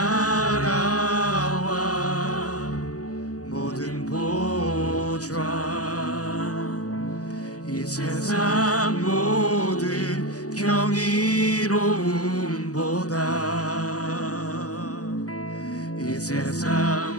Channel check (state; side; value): late; right; 0.67 ms